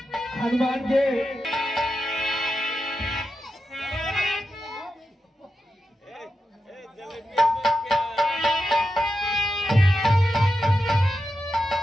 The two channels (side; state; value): both; normal; correlation 0.89